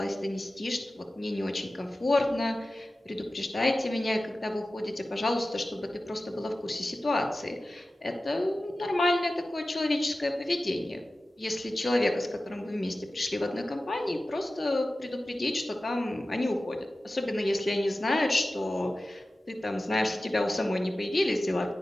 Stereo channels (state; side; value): normal; both; correlation 0.95